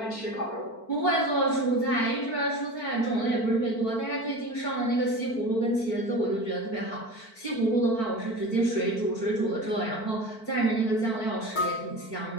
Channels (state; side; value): late; right; 4.5 ms